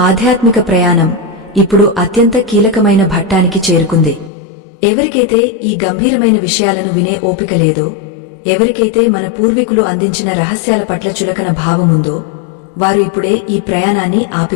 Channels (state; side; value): drops out; right; at 4.3 s